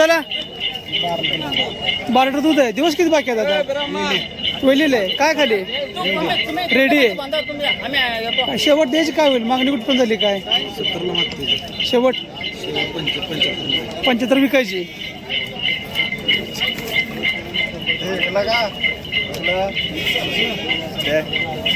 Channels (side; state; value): both; identical; correlation 1.00